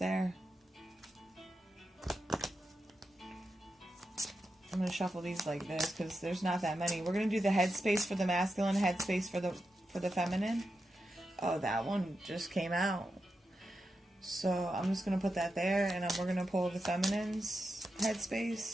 I'm gonna shuffle these like this because there's not that many. We're gonna do the headspace for the masculine, headspace for the feminine. Oh, that one just came out. So I'm just going to put that there, and we're going to pull the feminines.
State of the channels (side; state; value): both; normal; correlation 0.88